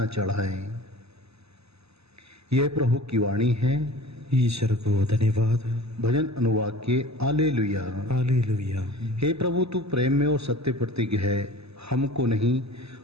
चढ़ाएं। यह प्रभु की वाणी है। ईश्वर को धन्यवाद। भजन अनुवाक्य हालेलुया। हालेलुया। हे प्रभु, तू प्रेम में और सत्य प्रतिज्ञ है।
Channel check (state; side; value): late; left; 0.79 ms